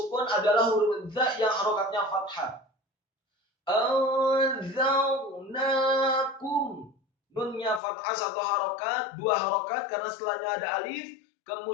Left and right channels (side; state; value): right; drops out; at 7.8 s